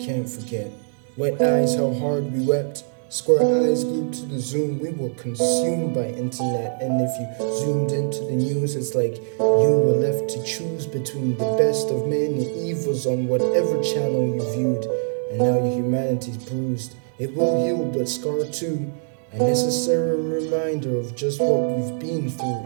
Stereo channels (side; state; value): left; silent; digital silence